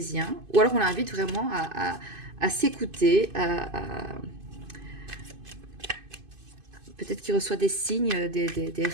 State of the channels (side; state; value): left; late; 2.5 ms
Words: Ou alors on l'invite vraiment à s'écouter, peut-être qu'il reçoit des signes, des